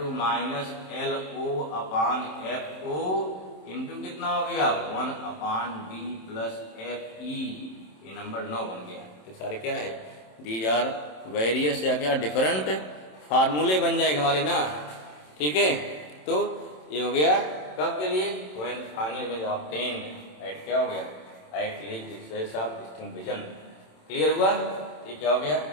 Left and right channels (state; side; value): late; right; 27 ms